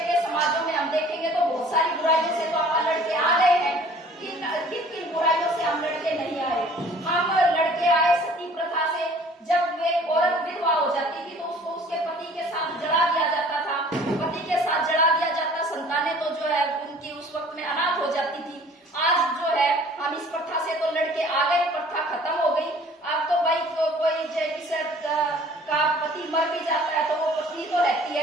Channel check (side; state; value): both; normal; correlation 0.51